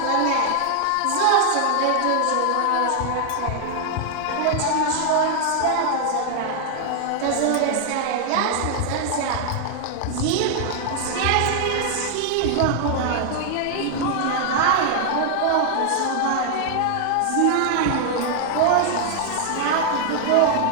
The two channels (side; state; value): both; different; correlation 0.00